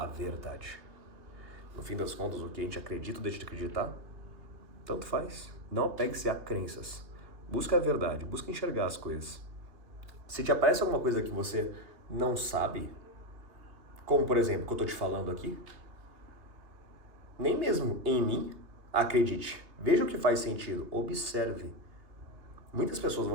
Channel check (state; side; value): late; left; 2.7 ms